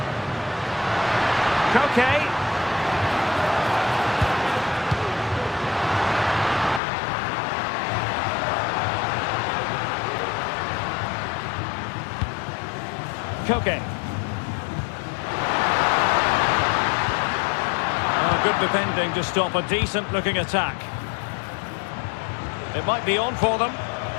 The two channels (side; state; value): right; drops out; at 6.8 s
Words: Koke. Koke. Oh, good defending to stop a decent-looking attack. It might be on for them.